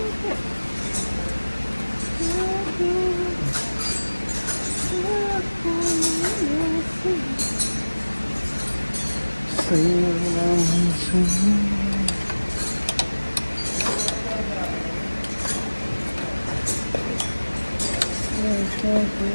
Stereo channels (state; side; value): inverted; both; correlation -1.00